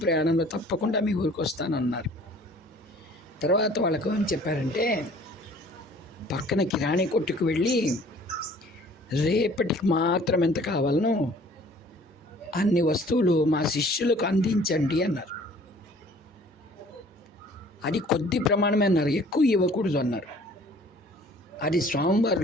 ప్రయాణంలో తప్పకుండా మీ ఊరికి వస్తానన్నారు. తర్వాత వాళ్ళకు ఏం చెప్పారంటే, పక్కన కిరాణీ కొట్టుకు వెళ్ళి రేపటికి మాత్రం ఎంత కావాలనో అన్ని వస్తువులు మా శిష్యులకు అందించండి అన్నారు. అది కొద్ది ప్రమాణమే అన్నారు, ఎక్కువ ఇవ్వకూడదు అన్నారు. అది స్వామివారు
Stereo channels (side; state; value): both; normal; correlation 0.52